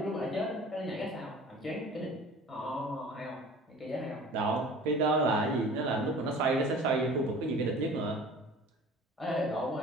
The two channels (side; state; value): both; normal; correlation 0.44